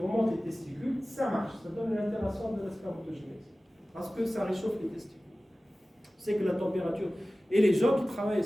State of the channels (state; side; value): normal; both; correlation 0.97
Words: les testicules, ça marche, ça donne une altération de la spermatogénèse, parce que ça réchauffe les testicules. C'est que la température. Et les gens qui travaillent